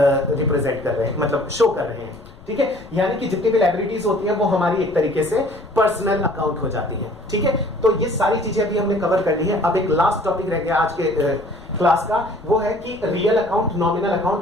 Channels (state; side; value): noise; left; rumble, 21 dB below the sound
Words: रिप्रेजेंट कर रहे हैं, मतलब शो कर रहे हैं, ठीक है। यानी कि जितनी भी लायबिलिटीज होती हैं वो हमारी एक तरीके से पर्सनल अकाउंट हो जाती है, ठीक है। तो ये सारी चीजें अभी हमने कवर कर ली है। अब एक लास्ट टॉपिक रह गया आज के क्लास का, वो है कि रियल अकाउंट, नॉमिनल